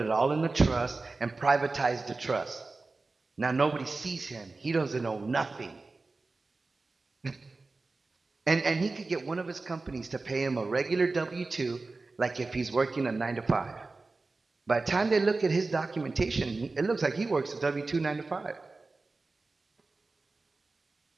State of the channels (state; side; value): quieter; left; 3.6 dB